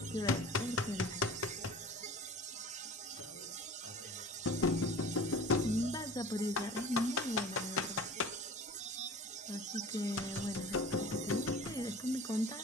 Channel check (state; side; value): normal; both; correlation 0.40